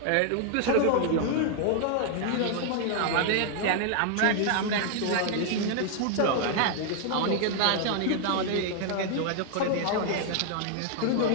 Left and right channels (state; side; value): different; both; correlation 0.00